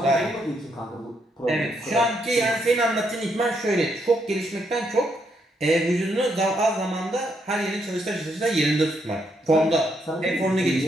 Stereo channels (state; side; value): normal; both; correlation 0.76